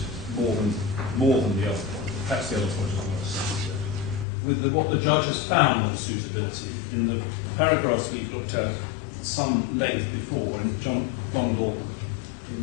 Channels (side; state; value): right; drops out; at 4.2 s